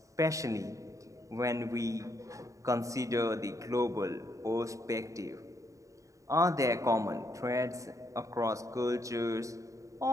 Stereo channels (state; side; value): late; left; 0.16 ms